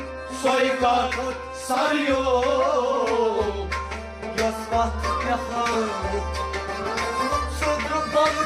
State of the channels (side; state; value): both; identical; correlation 1.00